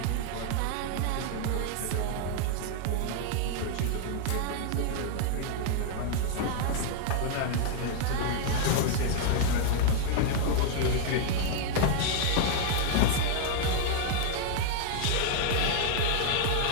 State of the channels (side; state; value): both; different; correlation 0.00